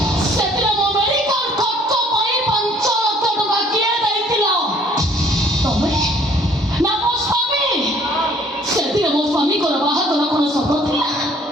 ସେଥିରେ ମୋ ମେଡିକାଲ ଖର୍ଚ୍ଚ ପାଇଁ 5 ଲକ୍ଷ ଟଙ୍କା କିଏ ଦେଇଥିଲା? ତମେ ନା ମୋ ସ୍ୱାମୀ? ସେଥିରେ ମୋ ସ୍ୱାମୀଙ୍କର ବାହାଘର କଣ ସତ ଥିଲା?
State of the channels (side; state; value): both; normal; correlation 0.58